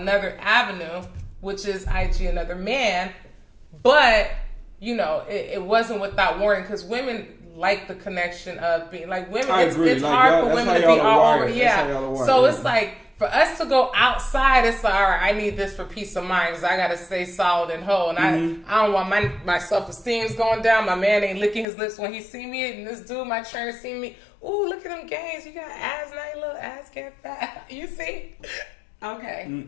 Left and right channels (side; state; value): right; drops out; at 21.7 s